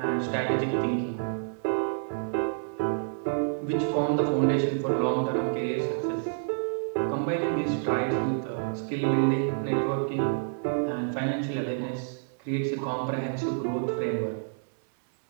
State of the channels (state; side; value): silent; left; 59 dB below the other